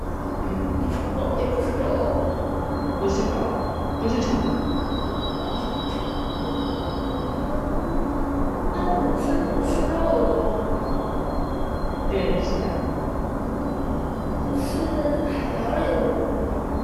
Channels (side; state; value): both; identical; correlation 1.00